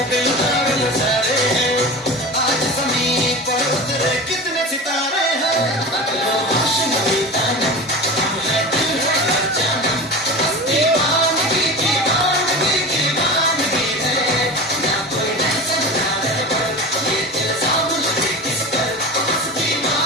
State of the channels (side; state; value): both; normal; correlation 0.30